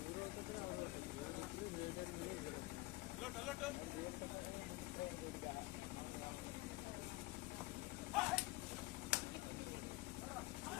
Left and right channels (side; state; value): right; quieter; 20.1 dB